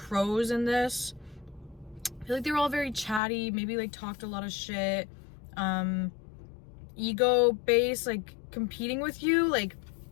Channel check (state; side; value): drops out; right; at 3.2 s